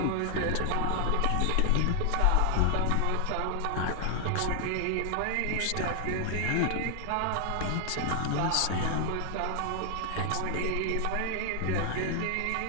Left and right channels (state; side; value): different; both; correlation 0.00